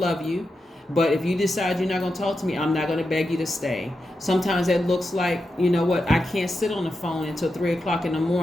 you. But if you decide you're not going to talk to me, I'm not going to beg you to stay. Sometimes that looks like, you know what, I can't sit on the phone until 3 o'clock in the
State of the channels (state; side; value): normal; both; correlation 0.88